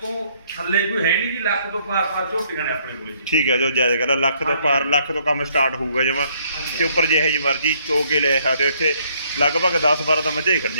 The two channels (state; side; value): inverted; both; correlation -0.67